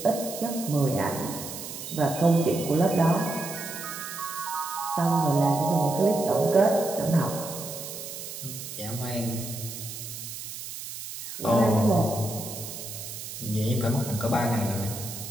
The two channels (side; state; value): right; noise; hiss, 9 dB below the sound